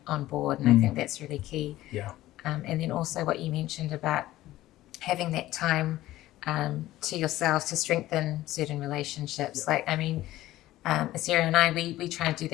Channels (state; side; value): quieter; right; 15.6 dB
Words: on board, and I think that's really key. And then also what you mentioned about having that time to yourself to strengthen certain relationships. Like, I mean, Sarah and I, we try and do